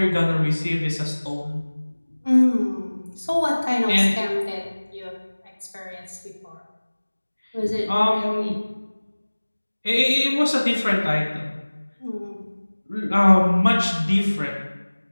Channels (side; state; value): both; inverted; correlation -1.00